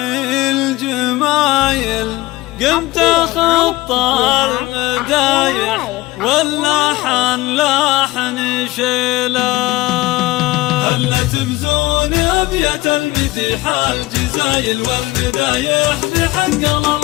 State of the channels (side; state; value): right; quieter; 19.1 dB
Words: الجمايل قمت خطى المدايح واللحن لحن شيله. هلا تمزون أبيات المديح الجزايل والمدايح بحق